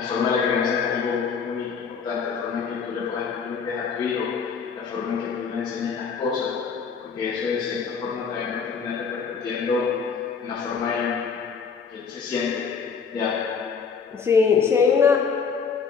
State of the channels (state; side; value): quieter; right; 5.9 dB